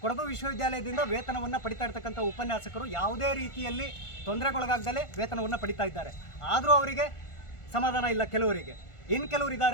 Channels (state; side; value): late; right; 1.4 ms